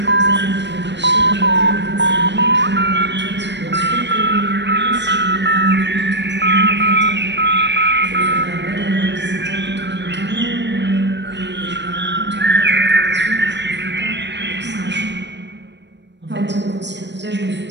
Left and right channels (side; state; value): left; late; 0.51 ms